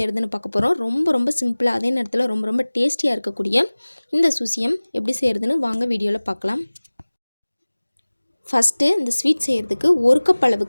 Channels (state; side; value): inverted; both; correlation -1.00